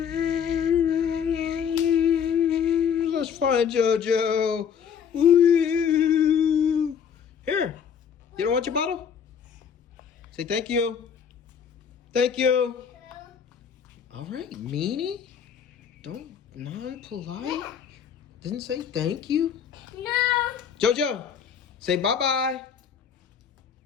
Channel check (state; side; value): quieter; right; 7.5 dB